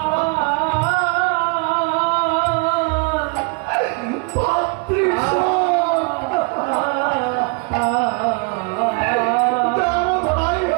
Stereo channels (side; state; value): left; quieter; 31.3 dB